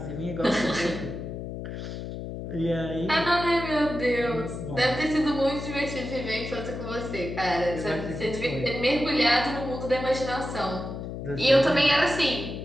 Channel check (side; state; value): left; noise; hum, 7 dB below the sound